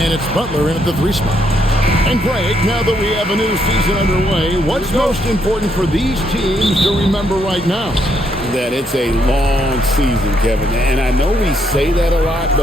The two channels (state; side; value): normal; both; correlation 0.74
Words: And it's Butler in at the 3 spot. And Greg, now that we have a new season underway, what's most important for these teams to remember right now? That it's a long season, Kevin. And I know we say that a lot,